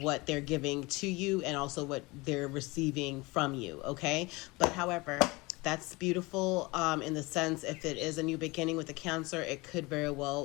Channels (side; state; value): right; quieter; 23.8 dB